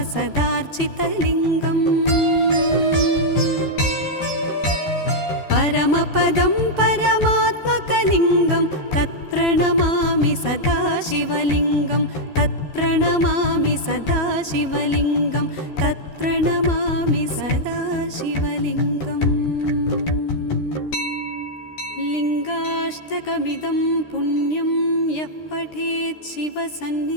परमपदं परमात्मकलिङ्गं तत्प्रणमामि सदा शिवलिङ्गं तत्प्रणमामि सदा शिवलिङ्गं तत्प्रणमामि सदा शिवलिङ्गम् लिङ्गाष्टकमिदं पुण्यं यः पठेत्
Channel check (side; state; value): right; late; 13 ms